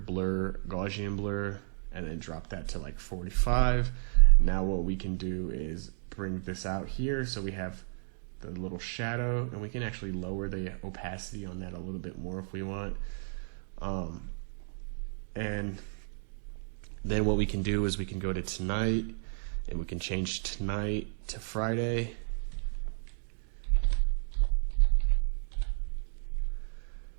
Gaussian blur, and then drop that to like 45. Now what we can do is bring this out here so we have the little shadow, and we can actually lower the opacity on that a little bit more if we want. And then what we can do is we can go to tonight, and we can change tonight to Friday.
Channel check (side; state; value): left; silent; digital silence